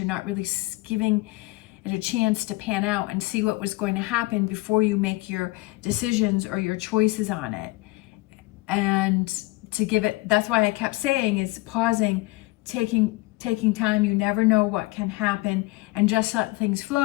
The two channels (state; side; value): quieter; right; 21.5 dB